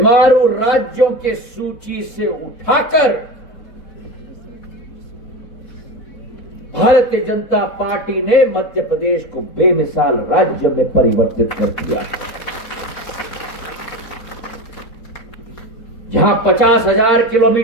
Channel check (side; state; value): right; late; 4.1 ms